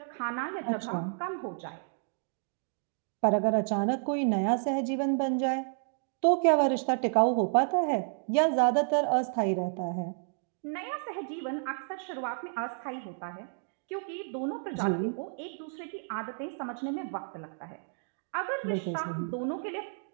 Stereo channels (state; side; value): silent; left; digital silence